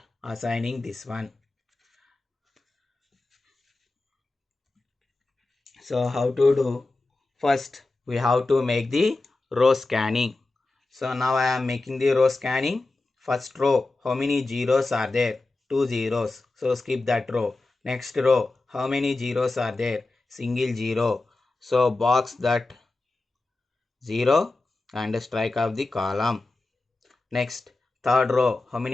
assigning this one. So how to do? First we have to make the row scanning. So now I am making the row scanning. First row, how many zeros are there? 2 zeros. So skip that row. Next row, how many zeros are there? Single zero. So box that 0 and strike off the column. Next, third row, how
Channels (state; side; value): quieter; right; 3.2 dB